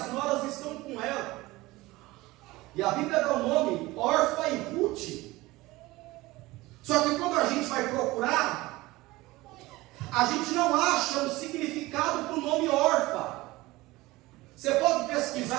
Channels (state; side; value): quieter; left; 19.9 dB